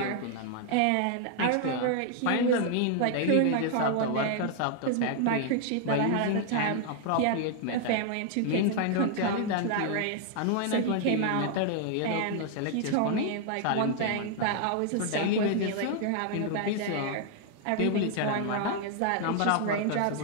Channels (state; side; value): different; both; correlation 0.00